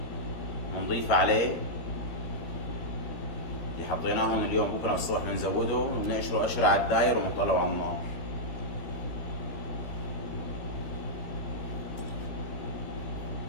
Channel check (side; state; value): right; late; 13 ms